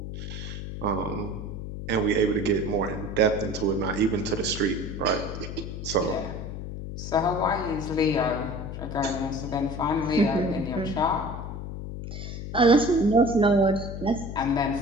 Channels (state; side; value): noise; left; hum, 7 dB below the sound